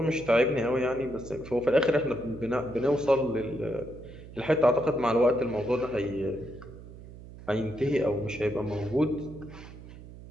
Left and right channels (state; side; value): noise; right; hum, 16 dB below the sound